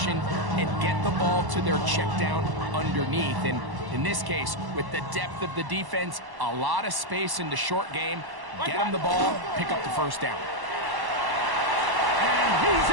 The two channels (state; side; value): late; left; 1.1 ms